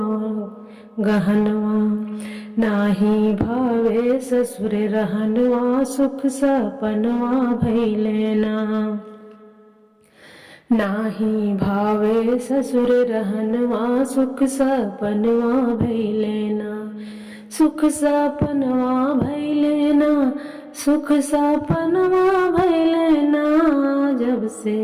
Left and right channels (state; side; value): identical; both; correlation 1.00